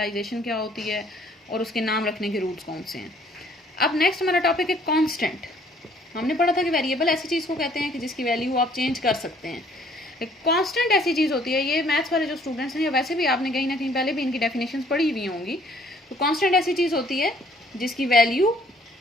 क्या होती है और उसके नाम रखने के रूल्स कौन से हैं। अब नेक्स्ट हमारा टॉपिक है कांस्टेंट। हमने पढ़ा था कि वेरिएबल ऐसी चीज़ को कहते हैं कि जिसकी वैल्यू आप चेंज कर सकते हैं। कांस्टेंट ऐसी चीज़ होती है, ये मैथ्स वाले जो स्टूडेंट्स हैं या वैसे भी आपने कहीं ना कहीं पहले भी इनकी डेफिनेशंस पढ़ी हुई होंगी। तो कांस्टेंट ऐसी चीज़ होती है जिसकी वैल्यू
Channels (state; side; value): normal; both; correlation 0.61